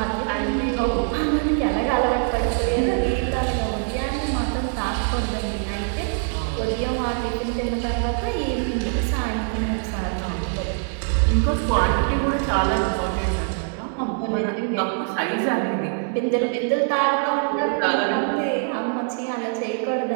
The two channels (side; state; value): left; silent; 58 dB below the other